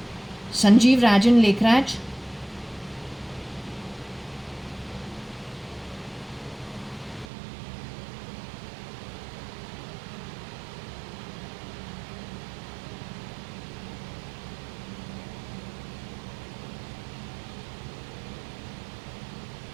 Sanjeev Rajan Lekhraj?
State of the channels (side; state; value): left; drops out; at 7.2 s